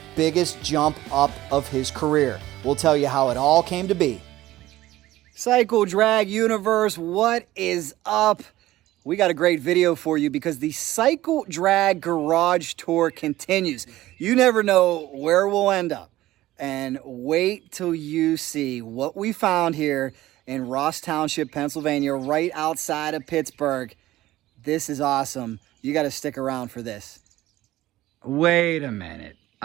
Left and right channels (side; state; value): left; quieter; 15.9 dB